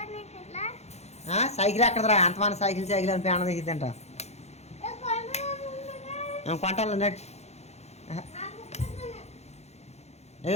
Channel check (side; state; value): right; late; 0.31 ms